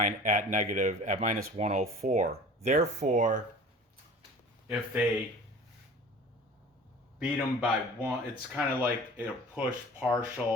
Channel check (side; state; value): both; normal; correlation 0.42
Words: at -104. Therefore, if they beat them by 1, it's kind of like a push